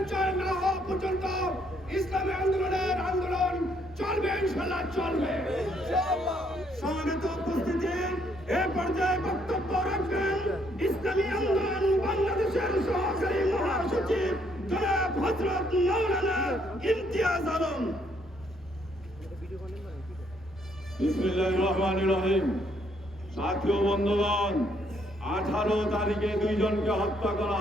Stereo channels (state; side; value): normal; both; correlation 0.70